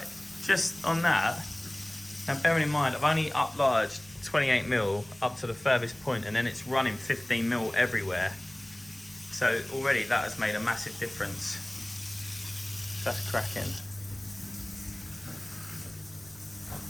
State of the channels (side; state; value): right; noise; rumble, 27 dB below the sound